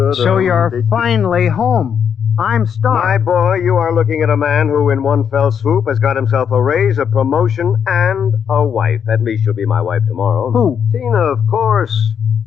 So you're finally home. I'm Star. My boy, you are looking at a man who, in one fell swoop, has got himself a raise, a promotion, and a wife. At least she'll be my wife tomorrow. Who? Tina, of course.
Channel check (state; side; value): quieter; right; 7.7 dB